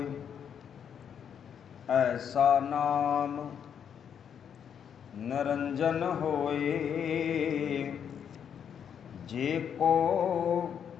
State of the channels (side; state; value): right; quieter; 8.1 dB